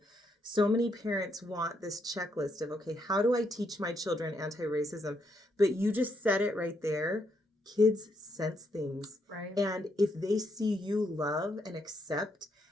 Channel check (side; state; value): both; normal; correlation 0.77